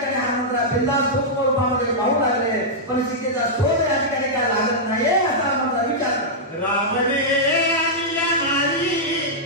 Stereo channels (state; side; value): normal; both; correlation -0.09